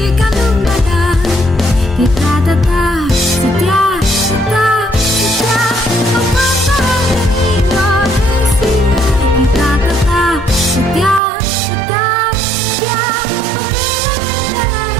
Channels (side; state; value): left; drops out; at 11.2 s